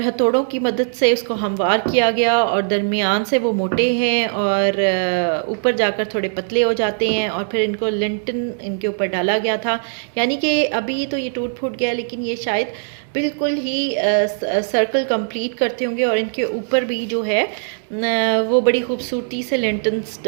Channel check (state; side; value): silent; left; 66 dB below the other